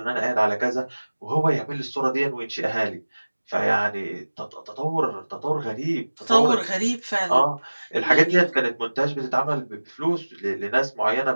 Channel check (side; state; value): both; inverted; correlation -1.00